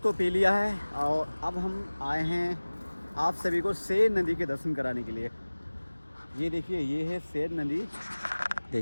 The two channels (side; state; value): both; inverted; correlation -1.00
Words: तो पी लिया है और अब हम आए हैं आप सभी को सेर नदी के दर्शन कराने के लिए। ये देखिए, ये है सेर नदी।